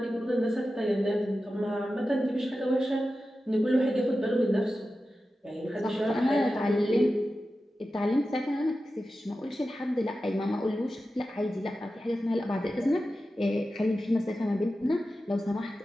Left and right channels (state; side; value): normal; both; correlation 0.93